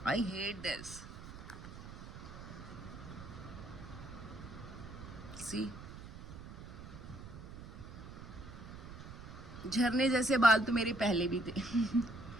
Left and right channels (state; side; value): noise; right; rumble, 13 dB below the sound